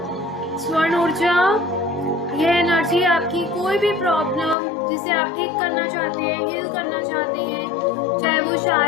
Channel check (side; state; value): right; drops out; at 4.5 s